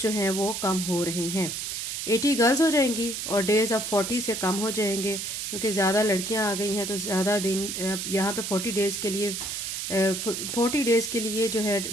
हैं वो कम हो रहे हैं। 80 गर्ल्स हो जाएंगी और डेज अब 40 से कम हो जाएंगे, क्योंकि ज्यादा लड़कियां आ गई हैं तो ज्यादा दिन। यहाँ पे 40 डेज के लिए 40 डेज के लिए जो है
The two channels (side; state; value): right; noise; hiss, 4 dB below the sound